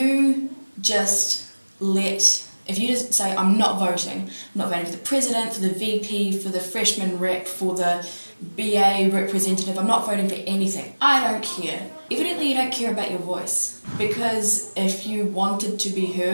just say, I'm not voting for the president, for the VP, for the freshman rep, for the BA representative, I'm not voting for anything. I don't care. Evidently you don't care about your voice, because if you wanted to be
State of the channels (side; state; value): both; inverted; correlation -1.00